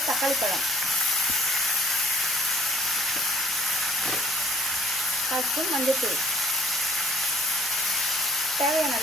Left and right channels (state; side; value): normal; both; correlation 0.60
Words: தக்காளி பழம், 1/2 ஸ்பூன் மஞ்சள்தூள், தேவையான